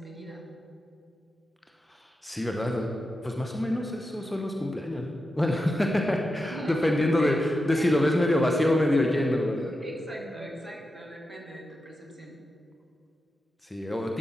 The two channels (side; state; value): both; normal; correlation 0.89